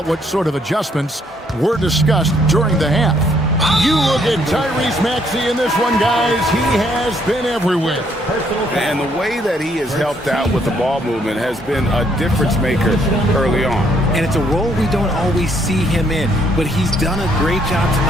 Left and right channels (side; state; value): both; normal; correlation 0.69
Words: what sort of adjustments were discussed during the half. You look at Tyrese Maxey in this one, guys. He has been everywhere. And the way that he has helped out with the ball movement has been a difference maker early on. And it's a role we don't always see him in, but he's done a great job